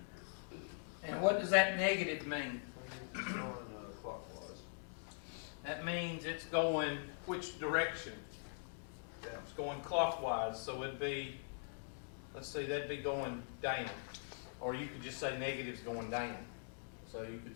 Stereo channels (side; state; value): right; silent; digital silence